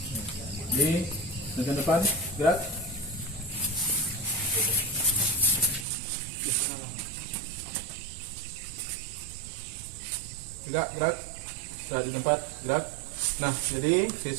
Di bagian depan, gerak. Gerak, gerak. Gerak di tempat, gerak. Nah, jadi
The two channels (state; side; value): drops out; left; at 5.9 s